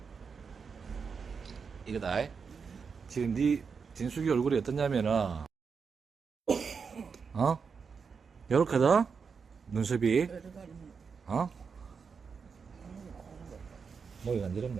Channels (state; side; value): quieter; left; 5.7 dB